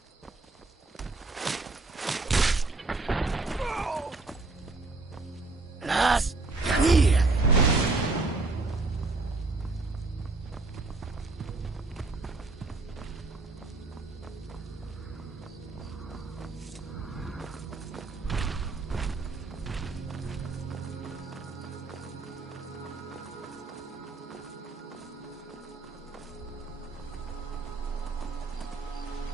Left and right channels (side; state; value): left; quieter; 3.6 dB